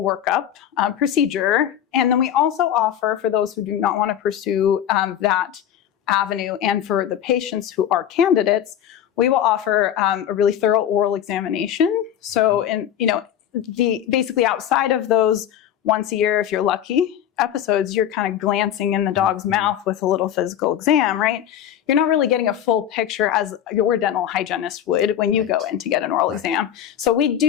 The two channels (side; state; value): right; quieter; 10.2 dB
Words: workup procedure. And then we also offer, for those who do not want to pursue that avenue, and for the patients who are candidates, we will offer a really thorough oral examination. So basically outside of those once a year, if you're lucky, episodes, you're kind of glancing in the dog's mouth with a little physical exam, right? You're not really getting a full picture as your dental hygienist would when you go in to get an oral exam. So we